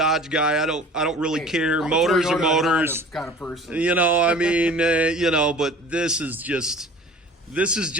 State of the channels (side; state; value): both; normal; correlation 0.44